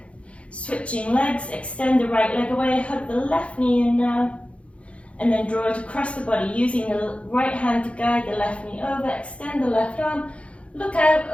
Switching legs, extend the right leg away, hug the left knee in now. And then draw it across the body using the right hand to guide the left knee over. Extend the left arm. Look out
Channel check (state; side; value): late; right; 0.062 ms